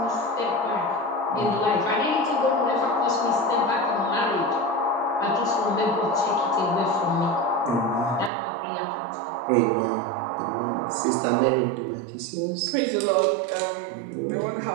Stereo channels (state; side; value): drops out; left; at 8.3 s